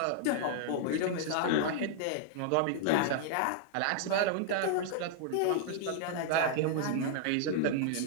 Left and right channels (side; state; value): both; different; correlation -0.01